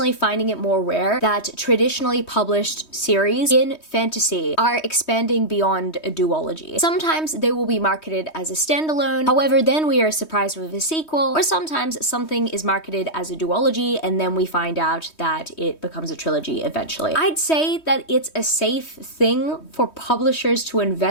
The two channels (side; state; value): right; late; 3.2 ms